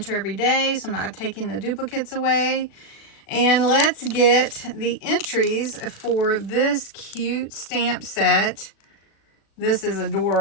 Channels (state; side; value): late; right; 36 ms